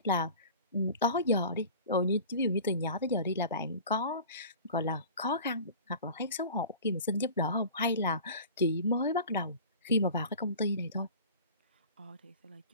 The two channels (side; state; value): both; inverted; correlation -0.40